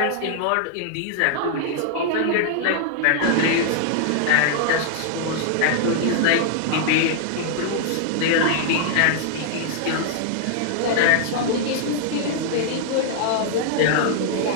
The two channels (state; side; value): different; both; correlation 0.00